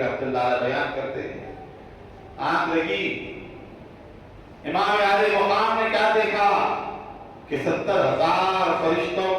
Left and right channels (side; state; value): both; identical; correlation 1.00